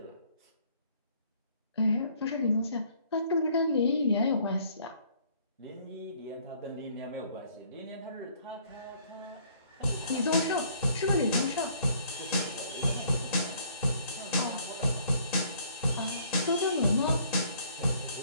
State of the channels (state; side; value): inverted; both; correlation -0.61